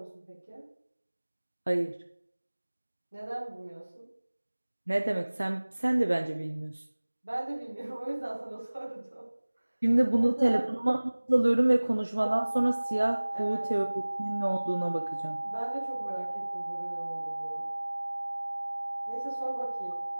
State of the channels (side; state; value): both; inverted; correlation -1.00